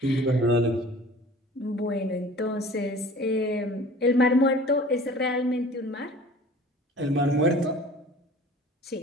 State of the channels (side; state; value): both; normal; correlation 0.45